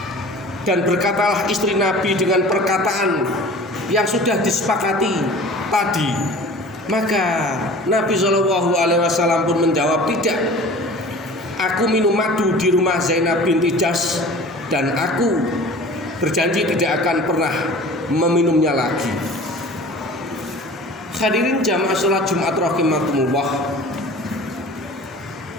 dan berkatalah istri Nabi dengan perkataan yang sudah disepakati tadi. Maka Nabi Shallallahu Alaihi Wasallam pun menjawab, tidak. Aku minum madu di rumah Zainab binti Jahsy dan aku berjanji tidak akan pernah meminumnya lagi. Hadirin jamaah sholat Jumat rahimakumullah.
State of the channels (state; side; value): normal; both; correlation 0.42